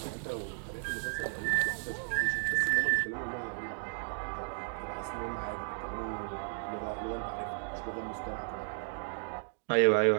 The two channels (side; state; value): left; silent; digital silence